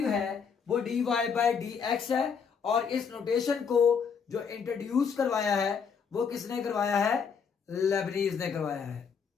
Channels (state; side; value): quieter; right; 6.3 dB